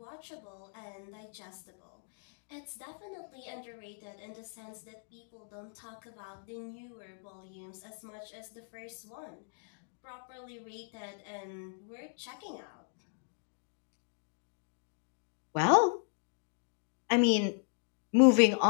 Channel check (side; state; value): right; silent; digital silence